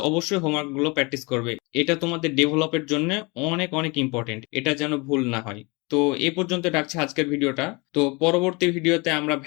অবশ্যই হোমওয়ার্কগুলো প্র্যাকটিস করবে, এটা তোমাদের ডেভেলপের জন্য অনেক অনেক ইম্পর্টেন্ট, এটা যেন ভুল না হয়। তো এই পর্যন্ত রাখছি আজকের ভিডিওটা। তো পরবর্তী ভিডিওতে আমরা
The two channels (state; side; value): quieter; right; 27.5 dB